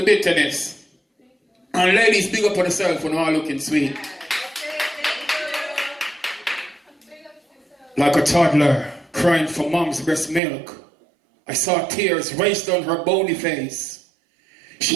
bitterness. And ladies, big up on yourself when all looking sweet. Like a toddler crying for mom's breast milk, I saw tears race down her bony face.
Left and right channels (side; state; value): left; drops out; at 10.4 s